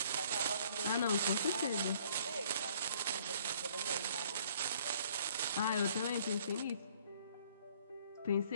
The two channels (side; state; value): both; inverted; correlation -0.59